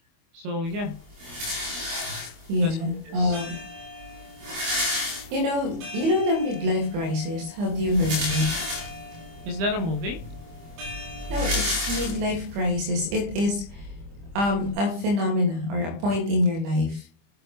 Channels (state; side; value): late; left; 25 ms